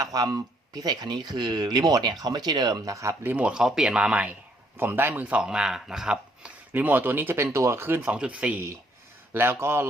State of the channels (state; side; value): normal; both; correlation 0.68